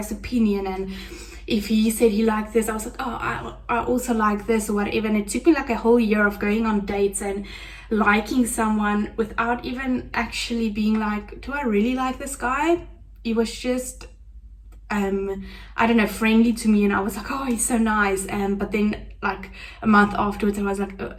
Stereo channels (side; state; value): both; identical; correlation 1.00